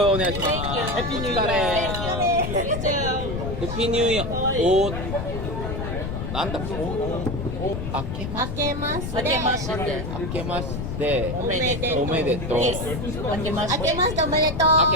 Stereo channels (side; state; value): left; noise; rumble, 4 dB below the sound